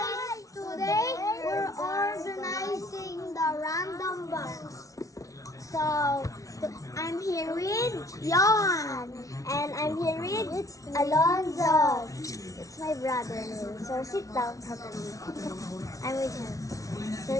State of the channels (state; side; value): late; right; 0.17 ms